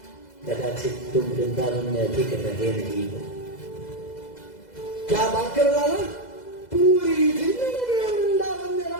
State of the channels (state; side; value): late; right; 2.0 ms